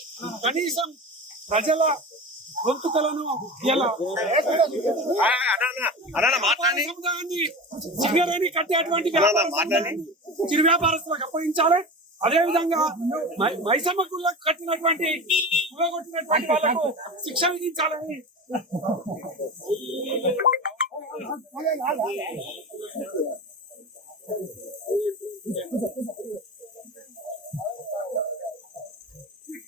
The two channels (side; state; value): both; normal; correlation 0.28